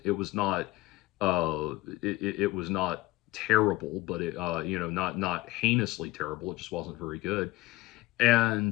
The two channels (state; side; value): quieter; right; 19.3 dB